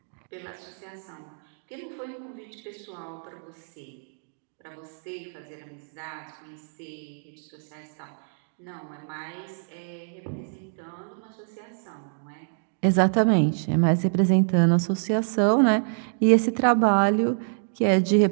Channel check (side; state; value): left; silent; digital silence